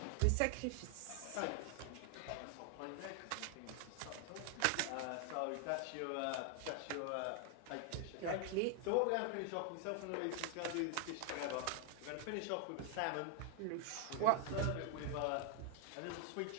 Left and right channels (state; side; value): different; both; correlation 0.00